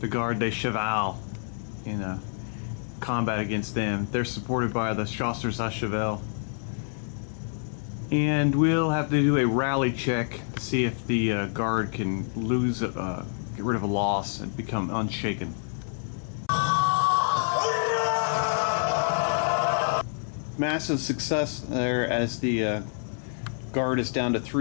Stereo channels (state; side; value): silent; right; 60 dB below the other